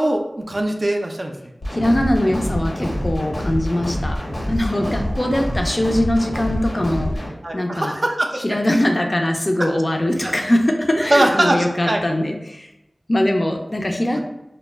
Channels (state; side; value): normal; both; correlation 0.98